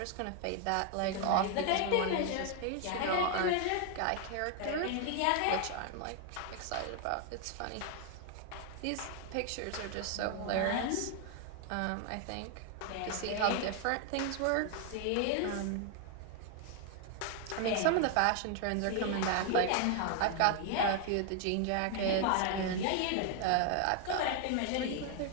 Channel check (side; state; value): both; different; correlation 0.00